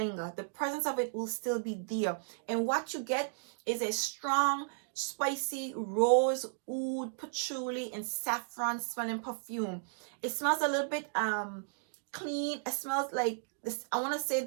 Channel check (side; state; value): left; silent; digital silence